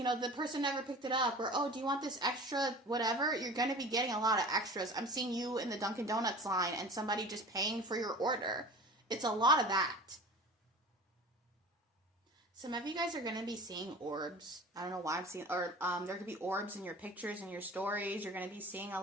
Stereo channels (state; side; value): normal; both; correlation 0.39